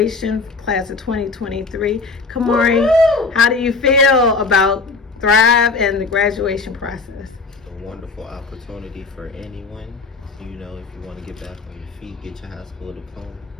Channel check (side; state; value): right; quieter; 4.1 dB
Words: class of 2023. Kamari, Woo-hoo! how do you feel about Thrive and the graduation process? A wonderful opportunity for anyone. You know, if you want to get back on your feet, get your high school diploma,